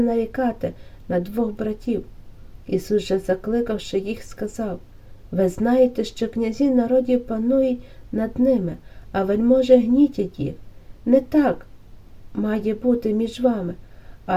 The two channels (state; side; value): identical; both; correlation 1.00